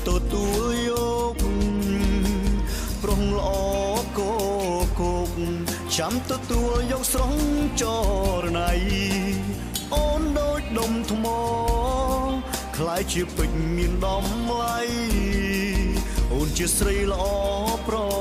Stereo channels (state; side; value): identical; both; correlation 1.00